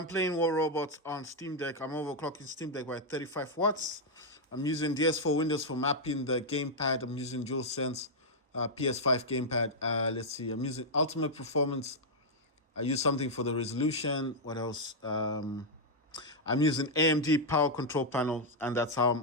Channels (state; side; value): normal; both; correlation -0.03